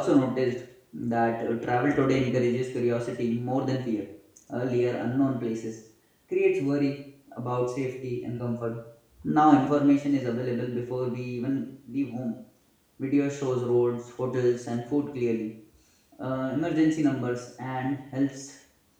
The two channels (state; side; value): identical; both; correlation 1.00